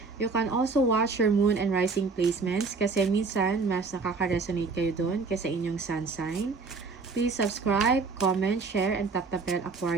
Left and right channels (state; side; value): quieter; left; 4.5 dB